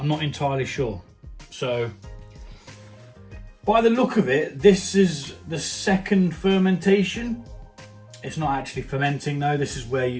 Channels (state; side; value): identical; both; correlation 1.00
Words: not entirely sure. So by the look of it, this is the second fermentation. It's not actually fermenting though. This is where